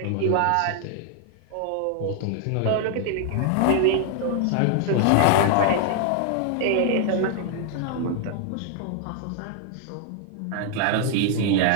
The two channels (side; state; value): both; different; correlation 0.00